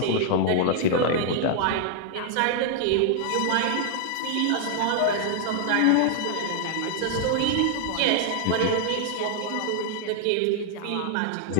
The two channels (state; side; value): different; both; correlation 0.00